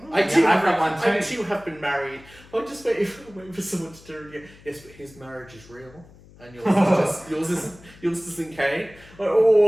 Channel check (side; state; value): left; noise; hum, 23 dB below the sound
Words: I too I've have got one I too. too have been married. I'm just waiting for someone to turn again. Yes, but his marriage is real. And yours isn't Kane.